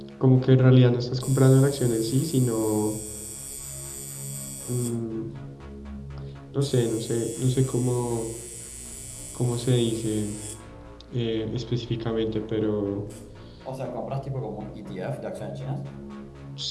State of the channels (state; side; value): identical; both; correlation 1.00